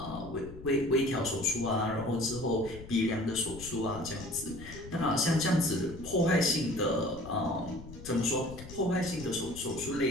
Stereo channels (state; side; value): noise; left; rumble, 14 dB below the sound